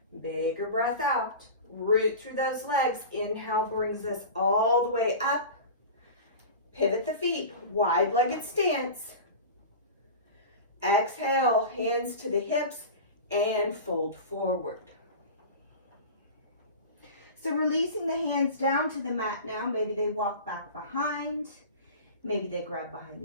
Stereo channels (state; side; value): inverted; both; correlation -0.32